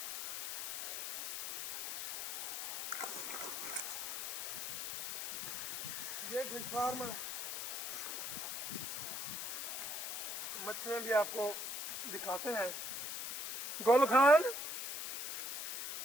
ये फिश फार्म है, मछलियाँ भी आपको दिखाते हैं। गोल खान,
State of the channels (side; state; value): left; noise; hiss, 3 dB below the sound